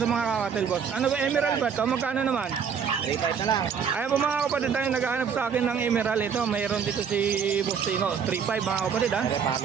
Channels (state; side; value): quieter; left; 6.9 dB